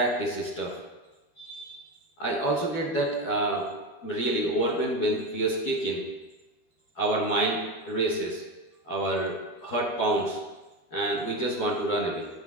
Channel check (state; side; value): late; right; 13 ms